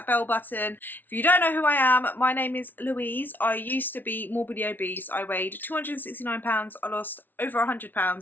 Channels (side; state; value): right; late; 0.089 ms